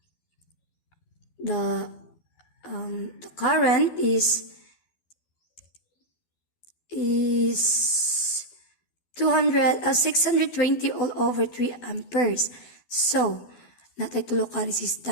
the current is 620 all over 3 amperes. So, natay tulo ka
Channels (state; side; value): late; right; 12 ms